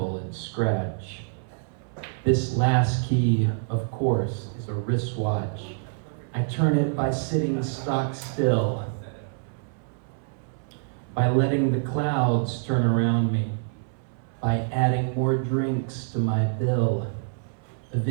and scratch. This last key, of course, is a wristwatch. I turn it by sitting stock still, by letting the clouds turn around me, by adding more drinks to my bill.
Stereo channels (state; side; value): silent; left; 60 dB below the other